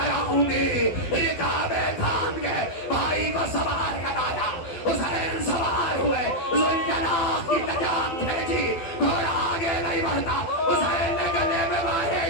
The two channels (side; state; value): right; late; 12 ms